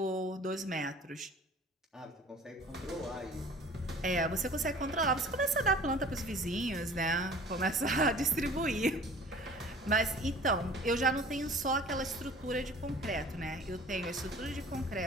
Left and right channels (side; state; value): both; normal; correlation 0.47